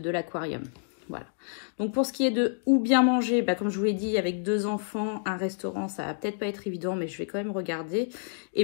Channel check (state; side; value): silent; right; digital silence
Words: l'aquarium. Voilà. Donc pour ce qui est de où bien manger, comme je vous l'ai dit, avec 2 enfants, un restaurant, ça va peut-être pas être évident, mais je vais quand même regarder. Et